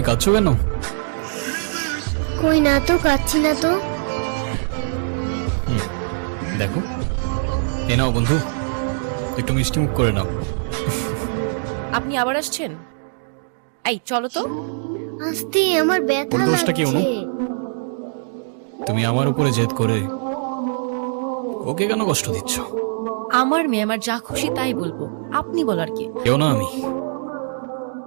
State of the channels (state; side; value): silent; left; digital silence